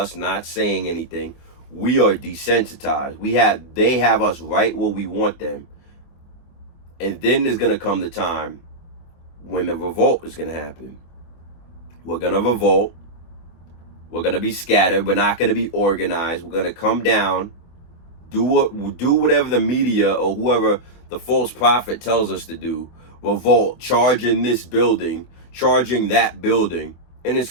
not saying anything, we are desensitized. They have us right where we want them. And then there's going to come the time when the revolt is going to happen. We're going to revolt. We're going to be scattered. We're not going to be organized. We're going to come down, do whatever the media or whoever the false prophet tells us to do. Revolt, charging this building, charging that building, and it's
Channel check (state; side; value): late; right; 24 ms